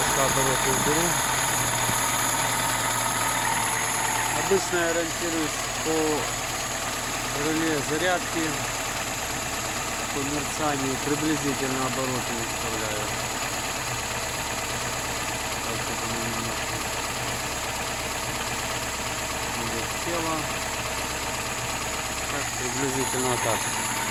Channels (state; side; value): identical; both; correlation 1.00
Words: обороты уберу. Обычно я ориентируюсь по реле зарядки, по мерцанию, приблизительно обороты выставляю. Так, чтобы оно немножко тело. Так, приблизительно вот так.